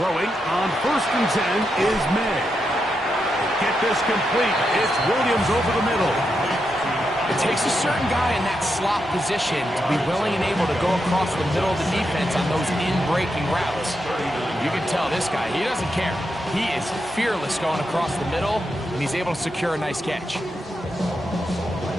on 1st and 10 is May. Get this complete. It's Williams over the middle. It takes a certain guy in that slot position to be willing and able to go across the middle of the defense on those in-breaking routes. You can tell this guy, he doesn't care. He is fearless going across the middle, and he's able to secure a nice catch.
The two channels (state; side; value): normal; both; correlation 0.85